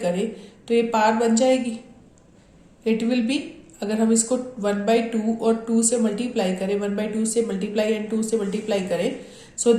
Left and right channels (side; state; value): both; identical; correlation 1.00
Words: तो ये पार बन जाएगी. इट विल बी, अगर हम इसको 1/2 और 2 से मल्टीप्लाई करें, 1/2 से मल्टीप्लाई एंड 2 से मल्टीप्लाई करें, so